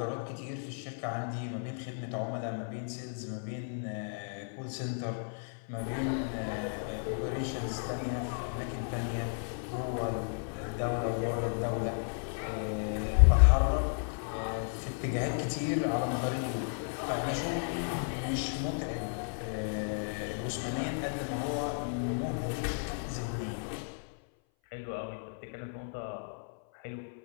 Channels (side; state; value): right; silent; 55 dB below the other